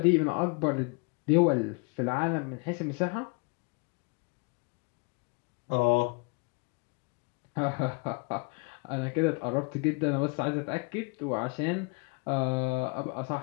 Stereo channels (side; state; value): right; quieter; 32.7 dB